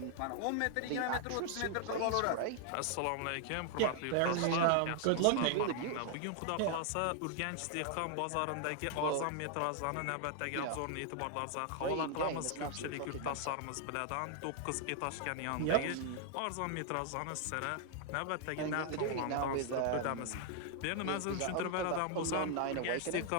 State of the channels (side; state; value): both; different; correlation 0.00